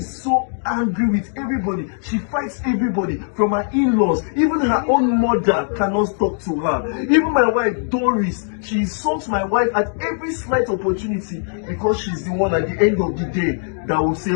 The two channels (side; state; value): right; silent; digital silence